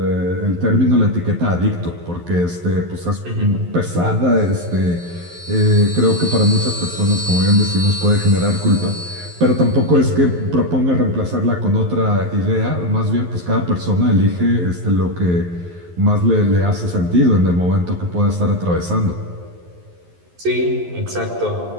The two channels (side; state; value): left; late; 11 ms